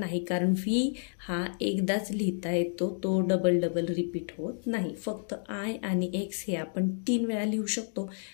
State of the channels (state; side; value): silent; right; digital silence